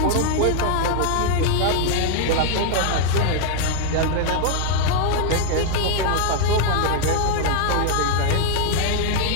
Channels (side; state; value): both; different; correlation 0.00